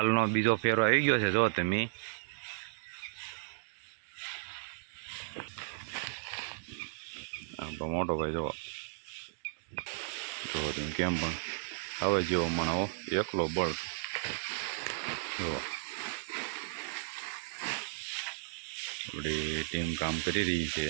બીજો ફેરો આવી ગયો છે. જો તમે મોટો ભાઈ જો તમે કેમ પણ હવે જેવો મને એકલો બળ જો આપણી ટીમ કામ કરી રહી છે.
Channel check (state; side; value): silent; left; digital silence